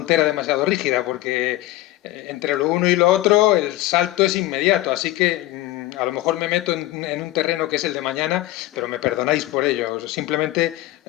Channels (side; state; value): right; quieter; 16.6 dB